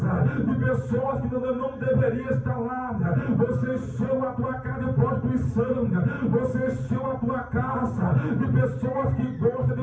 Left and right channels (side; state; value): both; identical; correlation 1.00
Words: de pessoas que não deveriam estar lá, você encheu a tua casa de prostituição, você encheu a tua casa de pessoas que gostam